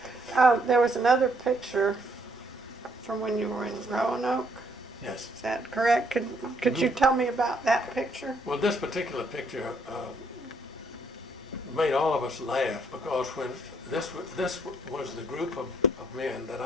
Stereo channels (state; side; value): normal; both; correlation 0.69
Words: There was another picture from when you were in Roanoke. Yes. Is that correct? Could you tell me about that picture? Well, this particular picture made all of us laugh, because when this was the group of men that